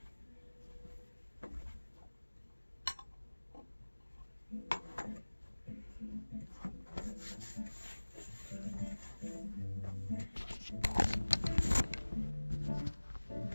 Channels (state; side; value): inverted; both; correlation -1.00